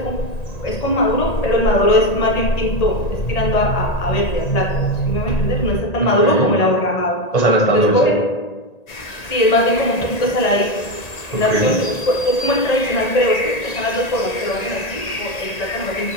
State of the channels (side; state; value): right; late; 1.9 ms